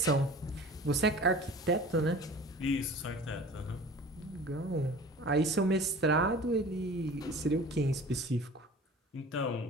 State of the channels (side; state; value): both; normal; correlation 0.42